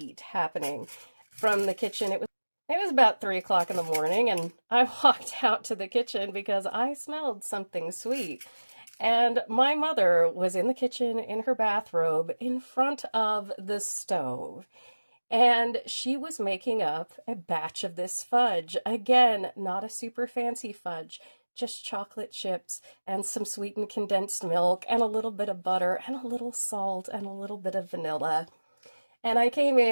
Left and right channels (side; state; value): both; inverted; correlation -1.00